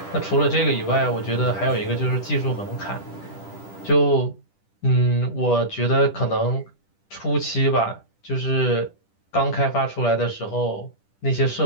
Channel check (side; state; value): right; late; 10 ms